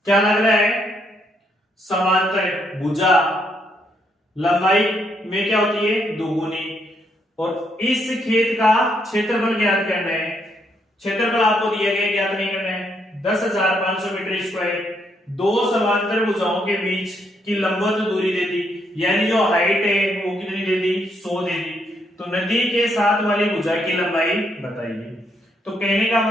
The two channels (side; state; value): both; normal; correlation 0.75